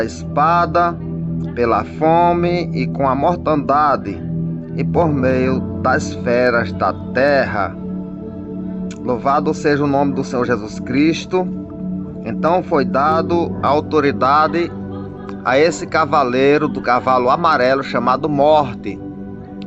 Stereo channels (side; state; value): both; identical; correlation 1.00